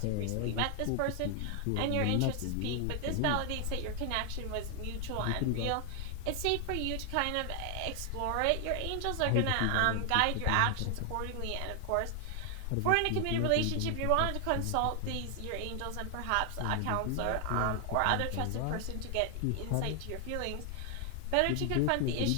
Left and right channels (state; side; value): different; both; correlation 0.00